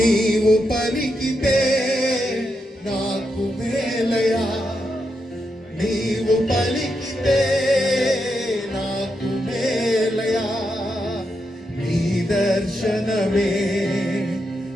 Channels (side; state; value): both; normal; correlation 0.84